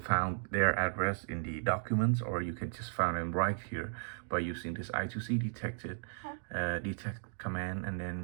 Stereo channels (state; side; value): silent; left; digital silence